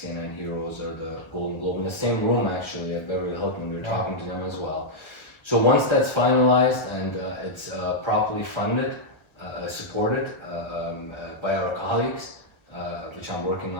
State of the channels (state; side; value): late; right; 1.3 ms